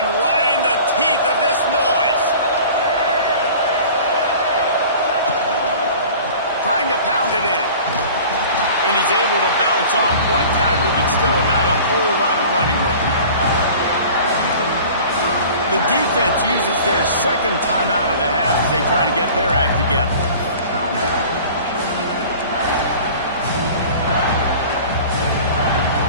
right in the teeth of this noise. Trying to pound it in. And he's able to bounce off one tackle, but still not a whole lot of running room. The defense uses their 2nd timeout of the half as they try to get their act together.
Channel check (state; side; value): inverted; both; correlation -0.43